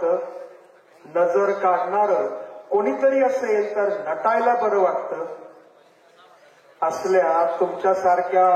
नजर काढणारं कोणीतरी असेल तर नटायला बरं वाटतं. असल्या तुमच्यासारख्या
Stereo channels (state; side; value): identical; both; correlation 1.00